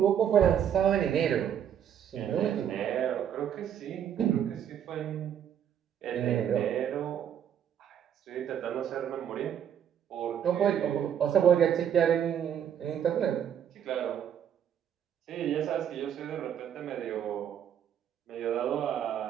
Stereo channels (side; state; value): left; quieter; 9.3 dB